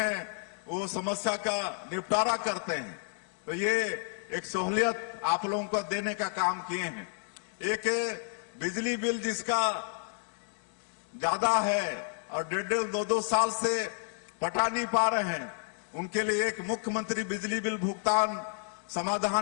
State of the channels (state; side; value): silent; right; digital silence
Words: वो समस्या का निपटारा करते हैं। तो ये एक सहूलियत आप लोगों को देने का काम किए हैं। एक बिजली बिल जिसका ज्यादा है और 1.5-2 साल से पटा नहीं पा रहे हैं, उनके लिए एक मुख्यमंत्री बिजली बिल भुगतान